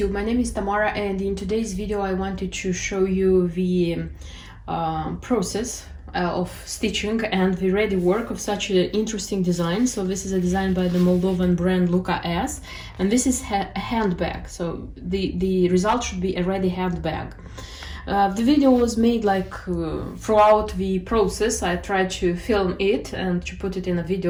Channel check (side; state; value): both; identical; correlation 1.00